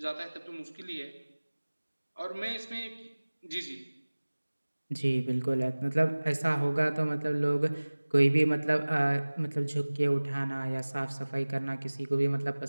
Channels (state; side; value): inverted; both; correlation -1.00